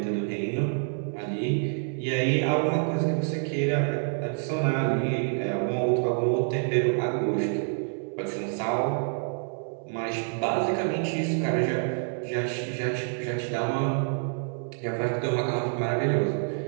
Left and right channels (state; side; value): silent; left; 58 dB below the other